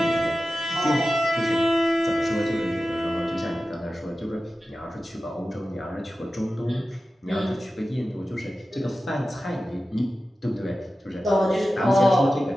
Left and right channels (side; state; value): both; normal; correlation 0.94